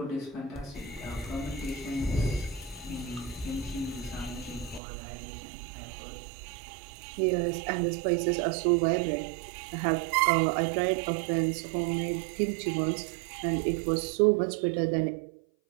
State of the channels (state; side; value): drops out; left; at 4.8 s